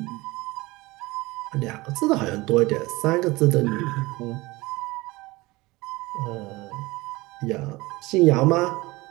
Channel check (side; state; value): left; quieter; 21.4 dB